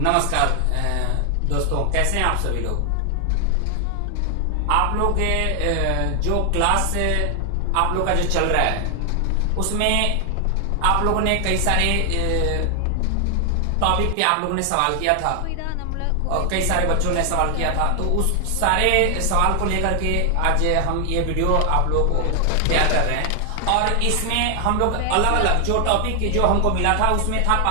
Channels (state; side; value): different; both; correlation 0.00